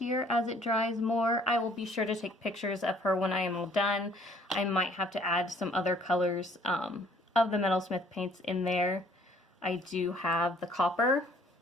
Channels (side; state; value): both; normal; correlation 0.59